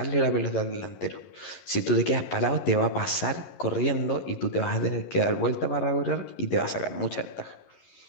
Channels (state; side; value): late; right; 11 ms